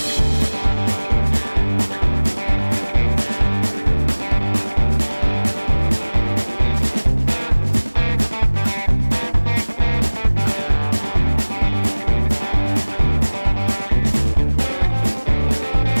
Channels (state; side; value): inverted; both; correlation -1.00